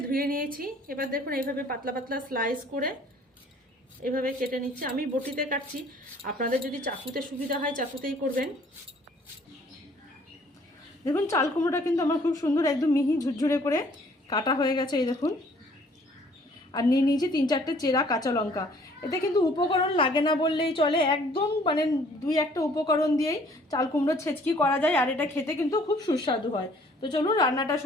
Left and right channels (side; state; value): both; normal; correlation 0.58